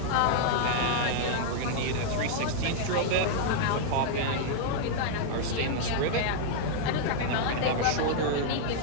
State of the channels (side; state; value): both; different; correlation -0.01